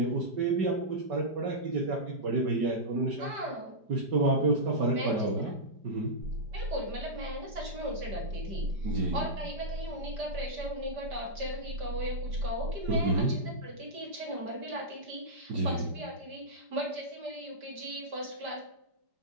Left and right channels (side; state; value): left; late; 5.1 ms